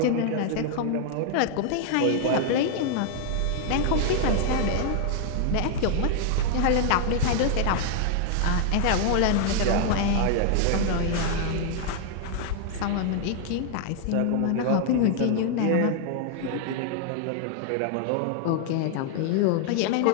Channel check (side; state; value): both; different; correlation 0.00